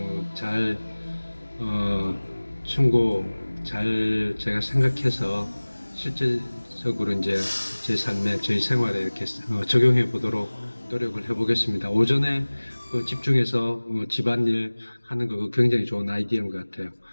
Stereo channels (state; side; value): inverted; both; correlation -1.00